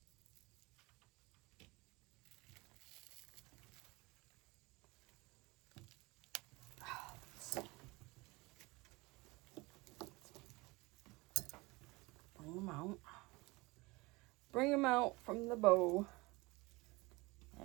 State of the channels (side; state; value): left; quieter; 23.6 dB